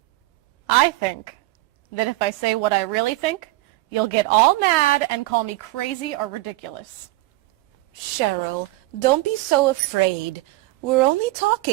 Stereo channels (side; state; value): left; quieter; 19.7 dB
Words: I think that if I say what I really think, you'll get all mad and call me crazy or ridiculous. Cheryl, don't be so afraid. We're only